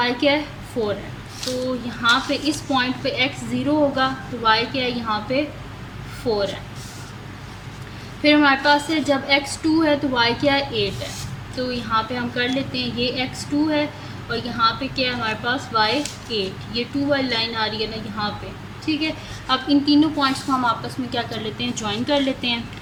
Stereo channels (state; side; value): identical; both; correlation 1.00